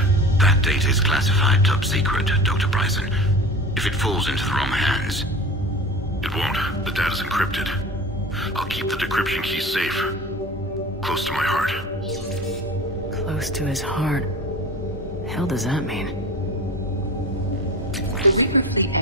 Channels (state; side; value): normal; both; correlation 0.35